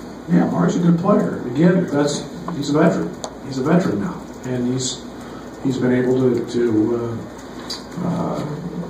Yeah, Mark's a good player. Again, he's a veteran. He's a veteran now, and he's been able to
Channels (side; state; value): both; identical; correlation 1.00